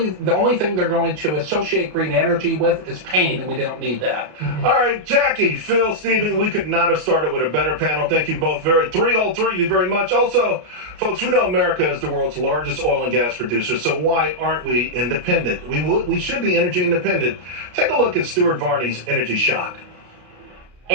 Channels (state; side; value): late; left; 33 ms